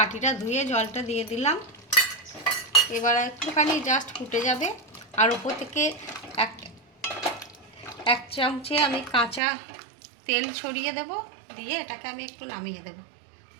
ধুয়ে জলটা দিয়ে দিলাম। এবার একটুখানি জাস্ট ফুটে যাবে। আর উপর থেকে এক চামচে আমি কাঁচা তেল ছড়িয়ে দেব। দিয়ে এটাকে আমি একটু নামিয়ে দেব।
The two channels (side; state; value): left; drops out; at 9.4 s